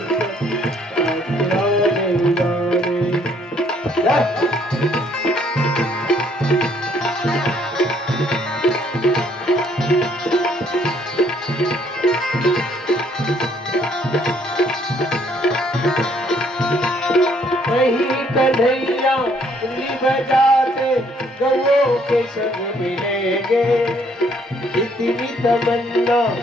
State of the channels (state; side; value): normal; both; correlation 0.65